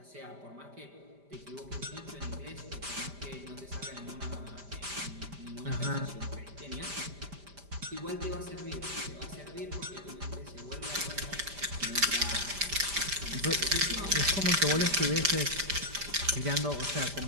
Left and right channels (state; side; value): late; left; 5.0 ms